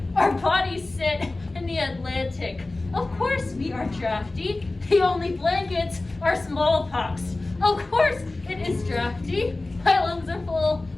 Our bodies sit in the Atlantic. Of course we are drafty. The only blankets are smallpox. Of course it is drafty. My lungs are full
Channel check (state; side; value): quieter; right; 3.0 dB